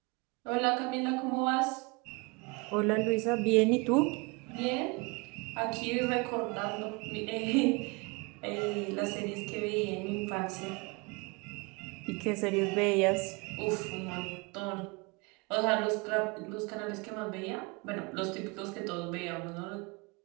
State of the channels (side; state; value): left; quieter; 28.1 dB